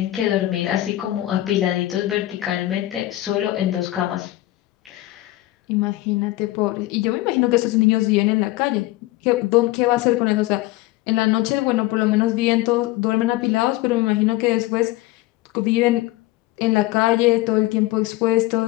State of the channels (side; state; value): right; quieter; 17.2 dB